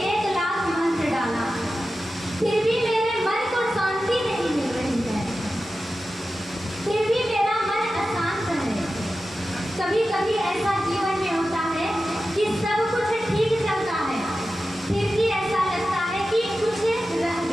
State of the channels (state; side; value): normal; both; correlation 0.93